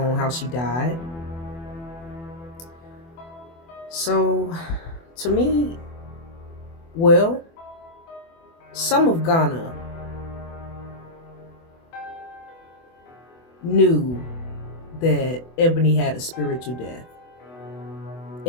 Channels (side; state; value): right; late; 24 ms